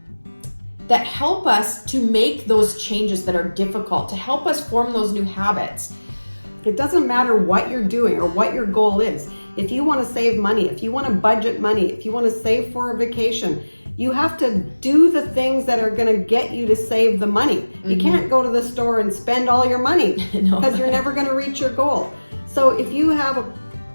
that help us to make those changes that are difficult, to help us form those new habits. It doesn't matter what you're doing or what your goal is. If you want to save money, if you want to budget money, if you want to save for a vacation, you have to do the things that are going to get you to save the money. You can't go to the store and spend all your money because you're never going to reach your goal. So if you have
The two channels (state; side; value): inverted; both; correlation -1.00